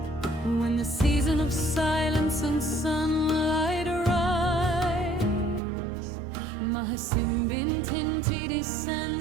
When the season of silence and sunlight arrives, Mahasimbintinti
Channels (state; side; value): drops out; left; at 5.6 s